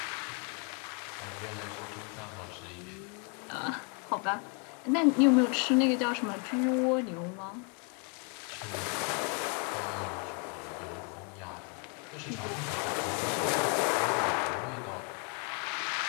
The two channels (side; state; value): right; quieter; 37.2 dB